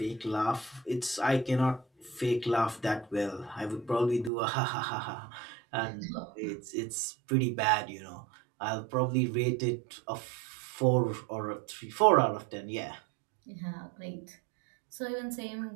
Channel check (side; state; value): left; drops out; at 4.3 s